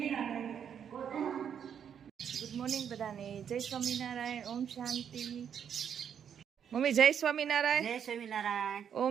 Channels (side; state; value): left; quieter; 8.2 dB